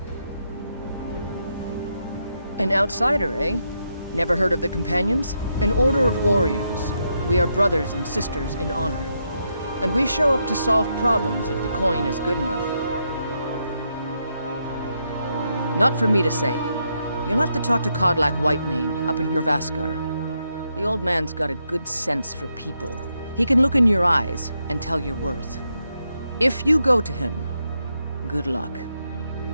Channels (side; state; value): both; inverted; correlation -0.81